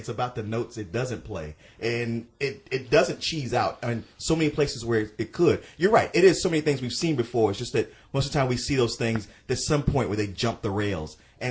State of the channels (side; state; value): both; identical; correlation 1.00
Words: about the notes it doesn't play, and it doesn't cheese out. I mean, so many places where it could. You're right. It is so many things we've seen before. It's just that most of the time we see those things, there's some point where they jump the rails,